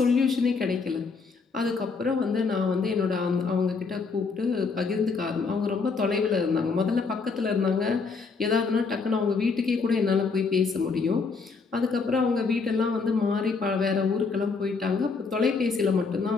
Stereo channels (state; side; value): quieter; right; 4.7 dB